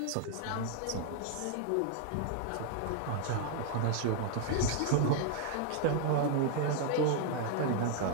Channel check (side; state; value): both; different; correlation 0.00